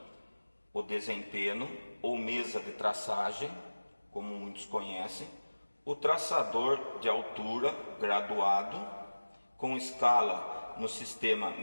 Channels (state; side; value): inverted; both; correlation -1.00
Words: o desempenho ou mesa de traçagem, como muitos conhecem, o traçador de altura graduado, com escala no sistema